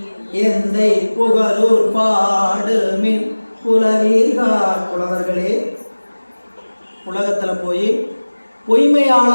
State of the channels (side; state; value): both; inverted; correlation -1.00